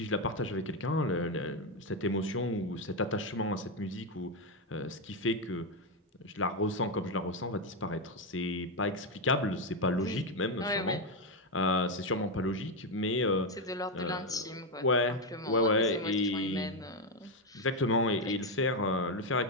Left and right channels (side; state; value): both; normal; correlation 0.06